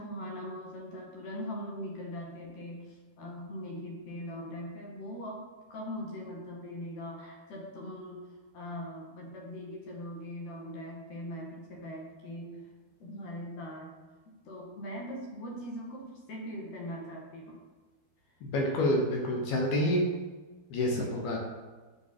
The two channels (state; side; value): late; right; 12 ms